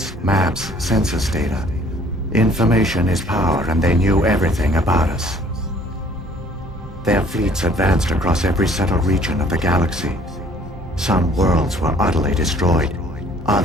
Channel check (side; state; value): both; normal; correlation 0.57